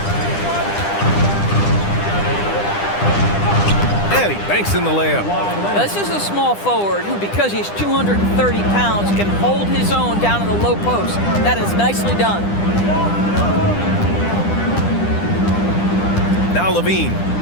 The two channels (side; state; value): right; late; 10 ms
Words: And he banks in the layup. This is a small forward who, because he's 230 pounds, can hold his own down in the low post. That is nicely done. Now Levine.